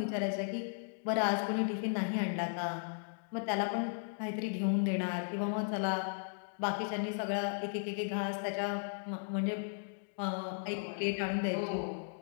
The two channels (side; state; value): right; silent; digital silence